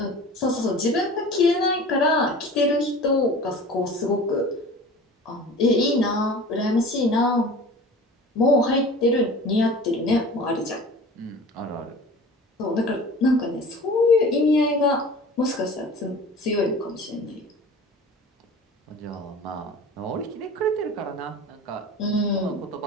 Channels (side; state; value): both; normal; correlation 0.40